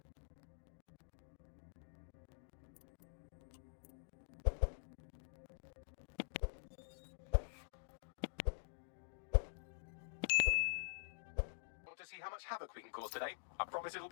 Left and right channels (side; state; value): right; silent; digital silence